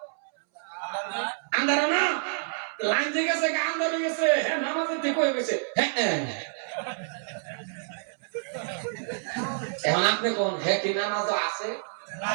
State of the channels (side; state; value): left; silent; 59 dB below the other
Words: আন্ধারা না, লাইন যে গেছে গা, আন্ধার হয়ে গেছে, হ্যাঁ নামাজের ঠিক হয়ে গেছে। এখন আপনি কোন হ্যাঁ কি নামাজ আছে?